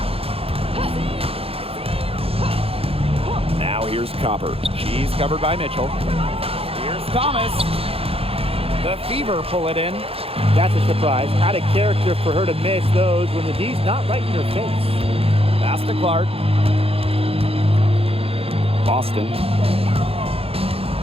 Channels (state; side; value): late; left; 0.28 ms